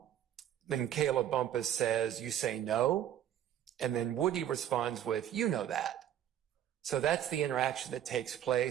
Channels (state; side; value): quieter; left; 10.9 dB